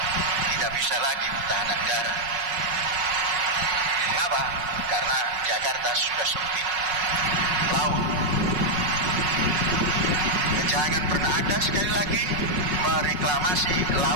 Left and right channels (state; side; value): late; left; 5.4 ms